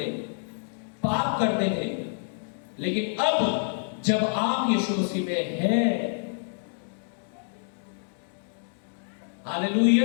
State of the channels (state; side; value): silent; right; digital silence